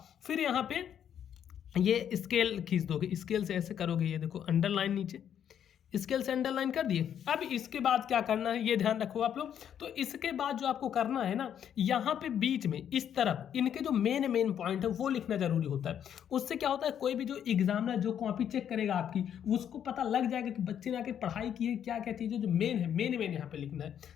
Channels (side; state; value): right; quieter; 9.2 dB